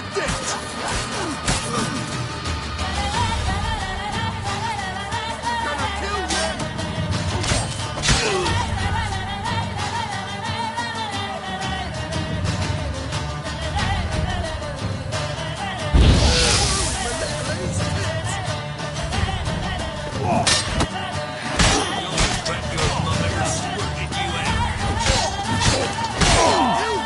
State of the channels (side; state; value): both; identical; correlation 1.00